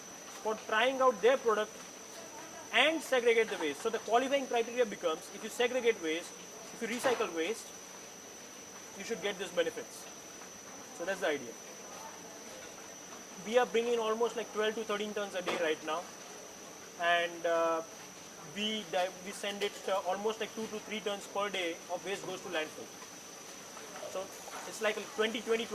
for trying out their product and segregate the waste. So the qualifying criteria becomes, if you segregate waste, if you recycle waste, you should get these benefits. So that's the idea. We are bringing almost like 12 to 13 tons a day right now, and we send it almost like 2 to 3 tons per day of waste goes to landfill. So it's like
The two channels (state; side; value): identical; both; correlation 1.00